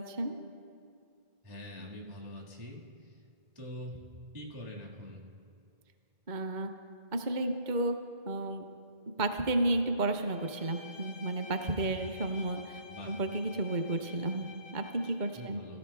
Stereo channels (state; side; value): late; left; 2.1 ms